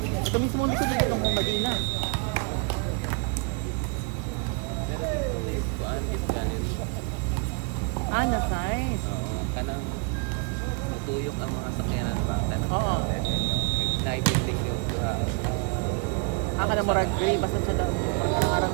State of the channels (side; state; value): left; quieter; 34.8 dB